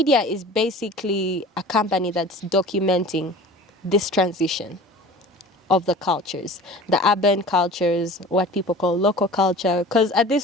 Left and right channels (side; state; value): both; normal; correlation 0.41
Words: is basically a company that's documenting this transition of the cultures, the urban cultures, what people call local culture. Because at